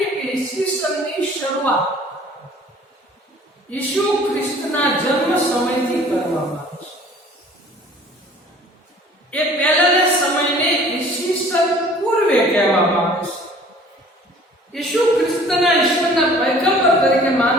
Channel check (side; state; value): both; normal; correlation 0.51